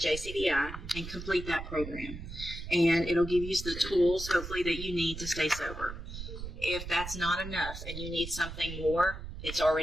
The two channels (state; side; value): noise; right; rumble, 9 dB below the sound